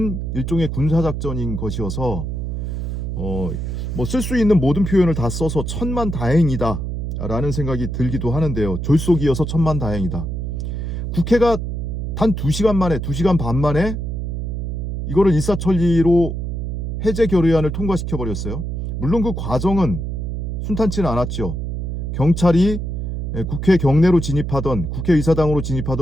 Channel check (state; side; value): noise; right; hum, 3 dB below the sound